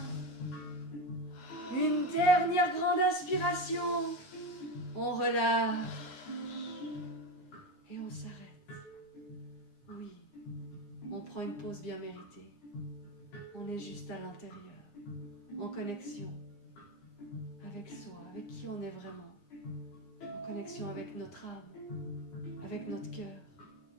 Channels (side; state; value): right; late; 9.8 ms